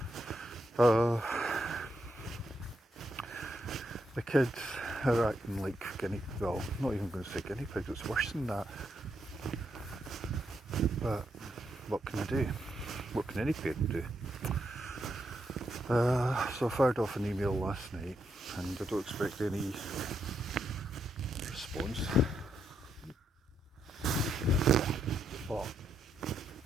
The kids are acting like well, not even going to say guinea pigs, it's worse than that. But what can I do? What can any parent do? So I fired off an email last night, and I don't expect any response. But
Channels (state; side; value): normal; both; correlation 0.80